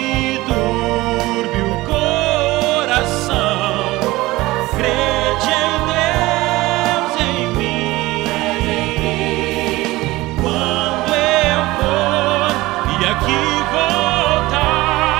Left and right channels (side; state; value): left; quieter; 19.3 dB